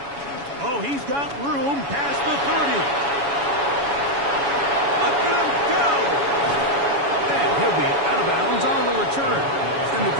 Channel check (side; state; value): left; late; 7.1 ms